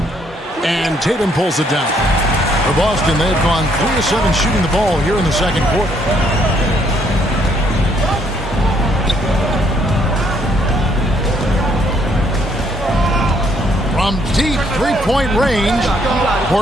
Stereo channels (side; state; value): both; normal; correlation 0.69